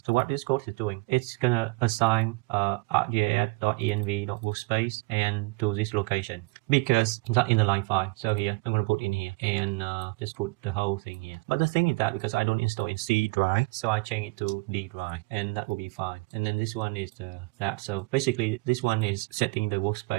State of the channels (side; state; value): left; quieter; 27.1 dB